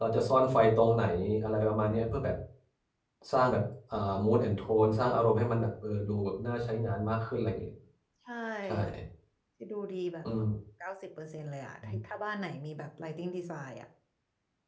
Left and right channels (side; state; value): both; identical; correlation 1.00